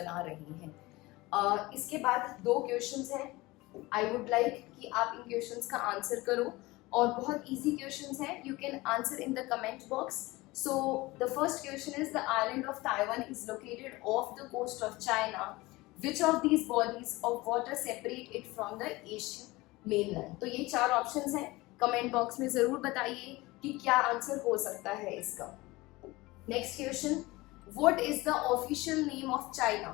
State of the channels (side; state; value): right; quieter; 21.0 dB